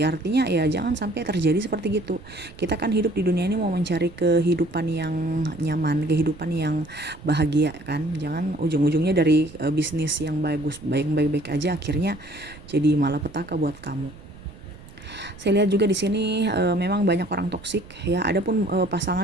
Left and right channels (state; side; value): noise; right; rumble, 19 dB below the sound